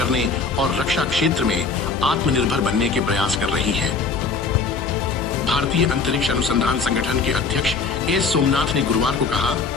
और रक्षा क्षेत्र में आत्मनिर्भर बनने के प्रयास कर रही है। भारतीय अंतरिक्ष अनुसंधान संगठन के अध्यक्ष एस सोमनाथ ने गुरुवार को कहा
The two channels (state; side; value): quieter; right; 4.7 dB